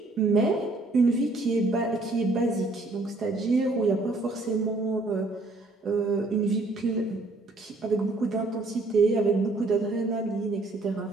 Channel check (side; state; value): left; quieter; 3.0 dB